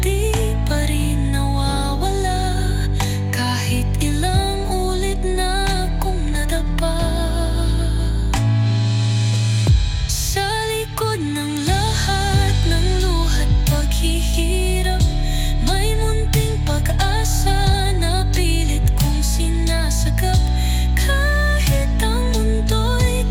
di pa rin nawawala, kahit ilang ulit na akong nadapa. Sa likod ng lahat ng luha't paghihirap, may munting pag-asa na pilit kong sinasagap. Kahit ang mundo'y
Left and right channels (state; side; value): identical; both; correlation 1.00